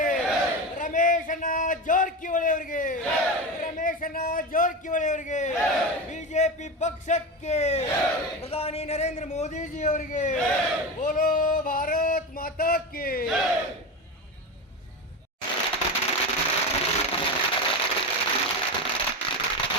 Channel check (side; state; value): both; normal; correlation 0.21